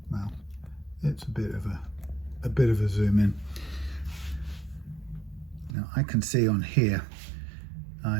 Well, it's a bit of a zoom in. Now I can see on here I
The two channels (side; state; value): left; drops out; at 5.8 s